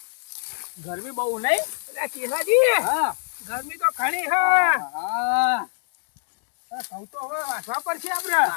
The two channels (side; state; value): right; silent; digital silence